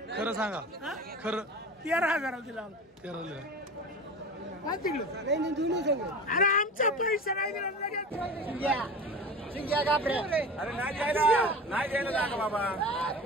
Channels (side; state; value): both; normal; correlation 0.32